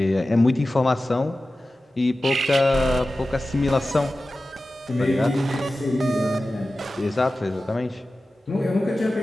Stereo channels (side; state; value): both; normal; correlation 0.95